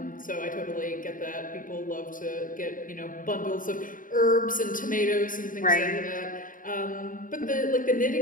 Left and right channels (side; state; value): right; late; 0.39 ms